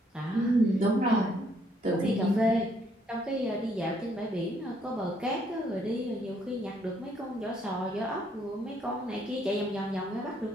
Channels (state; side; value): normal; both; correlation 0.69